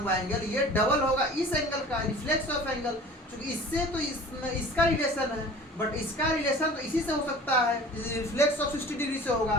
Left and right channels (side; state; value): both; normal; correlation 0.43